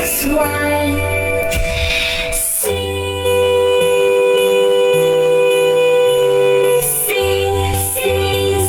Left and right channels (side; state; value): both; identical; correlation 1.00